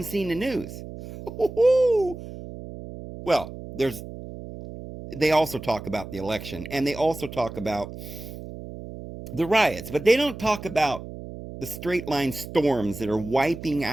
seen the news. Well, they also talk about the election, and they also talk about the riots, but they don't talk about the straight line storms that are wiping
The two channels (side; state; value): right; noise; hum, 12 dB below the sound